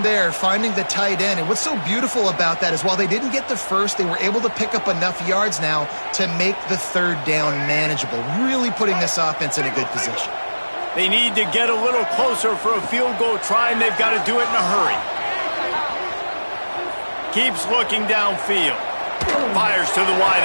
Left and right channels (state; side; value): inverted; both; correlation -1.00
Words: there, finding the tight end. And what's so beautiful about that is while they didn't get the first, they were able to pick up enough yards now to make the 3rd down manageable, really putting this offense in a good position. They need to get a little closer for a field goal try, and they've got to do it in a hurry. Keeps looking downfield. Fires to the